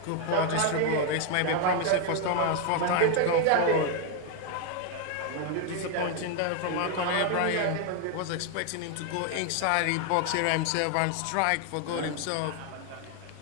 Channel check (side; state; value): both; different; correlation 0.01